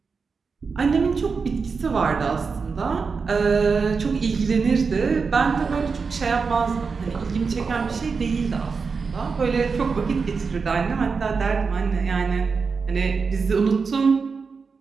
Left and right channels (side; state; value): left; quieter; 5.0 dB